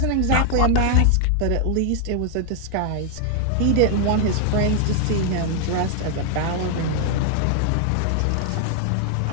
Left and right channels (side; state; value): both; different; correlation 0.00